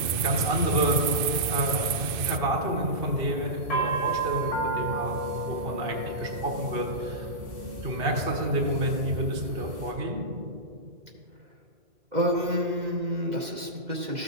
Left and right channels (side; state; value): left; late; 2.5 ms